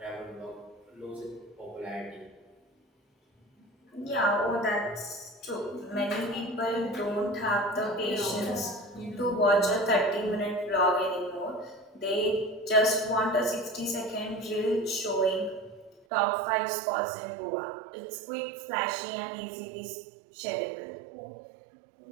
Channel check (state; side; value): drops out; left; at 16.1 s